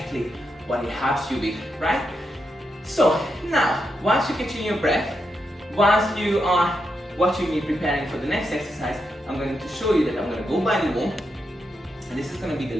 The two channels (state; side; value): normal; both; correlation 0.84